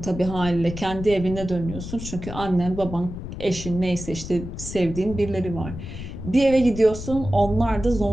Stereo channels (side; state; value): left; noise; rumble, 9 dB below the sound